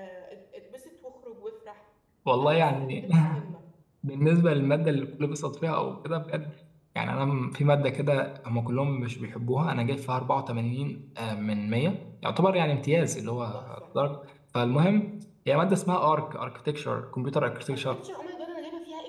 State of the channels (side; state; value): both; identical; correlation 1.00